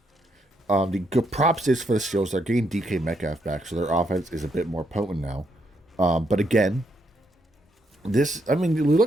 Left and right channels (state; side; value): normal; both; correlation 0.77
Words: The good props is for the Steelers. They're getting DK Metcalf back, so their offense is a bit more potent now. But again, look at